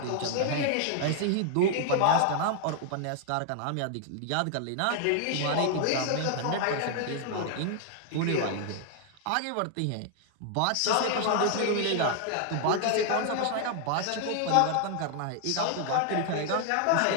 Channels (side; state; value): both; different; correlation 0.00